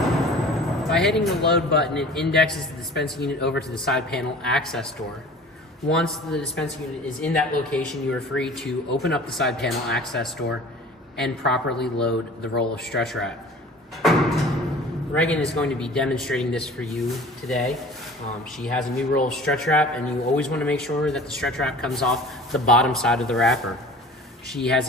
By hitting the load button, it indexes the dispensing unit over to the side panel access door. Once the dispensing unit is in that location, you are free to open up the side panel access door and properly load the roll of stretch wrap. Reagan is going to be demonstrating this for you today. She has a new roll of stretch wrap, and you always want to make sure that the stretch wrap comes off the bottom side of the wrapper. She has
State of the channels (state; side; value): normal; both; correlation 0.43